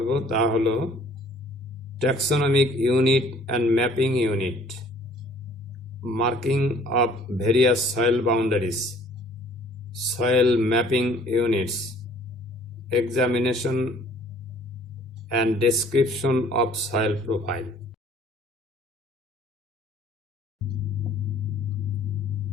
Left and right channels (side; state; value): both; normal; correlation 0.55